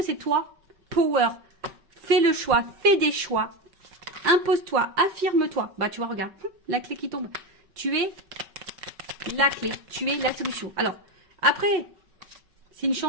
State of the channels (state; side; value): late; left; 5.3 ms